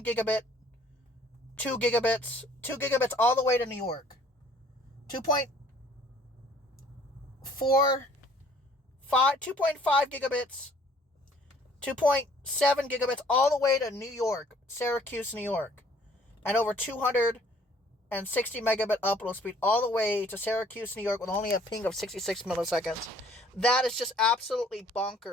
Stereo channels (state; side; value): normal; both; correlation 0.57